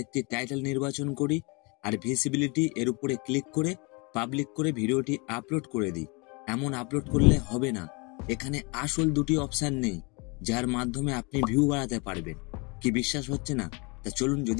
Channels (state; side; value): quieter; right; 29.9 dB